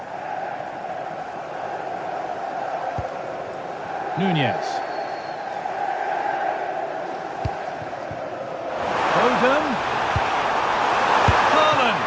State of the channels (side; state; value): both; identical; correlation 1.00